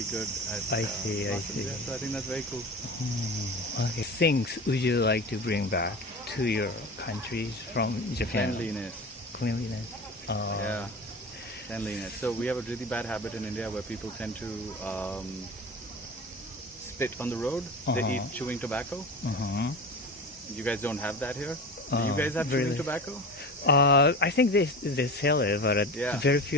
good. I see. Yeah, so I think that's very cool. Okay. Things would you like to bring back to your countries from Japan? Cleanliness. Yeah. Cleanliness. So we have a really bad habit in India where people tend to spit on the road. They eat chewing tobacco. You guys don't have that here? Do you guys have chewing tobacco? I think they sell it, but very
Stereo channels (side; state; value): both; normal; correlation 0.31